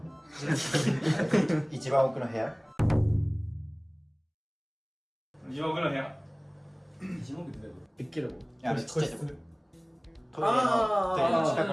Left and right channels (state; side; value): identical; both; correlation 1.00